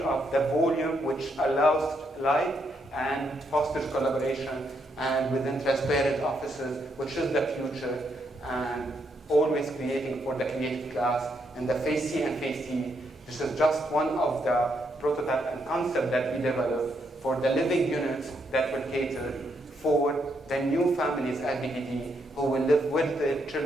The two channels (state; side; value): normal; both; correlation 0.77